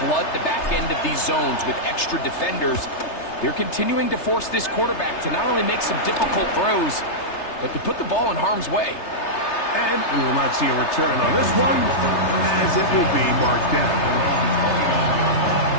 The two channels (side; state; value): right; late; 3.3 ms